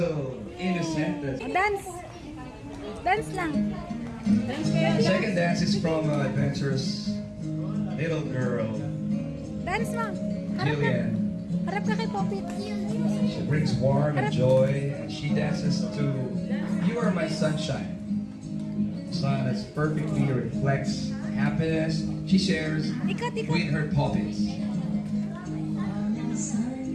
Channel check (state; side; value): identical; both; correlation 1.00